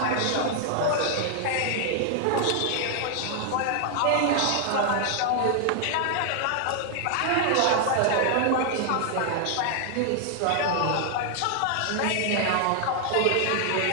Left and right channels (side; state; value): both; different; correlation 0.00